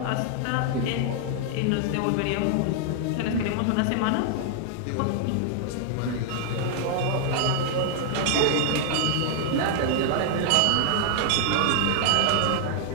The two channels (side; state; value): both; different; correlation 0.00